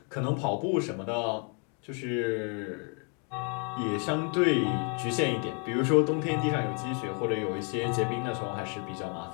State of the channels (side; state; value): right; quieter; 38.5 dB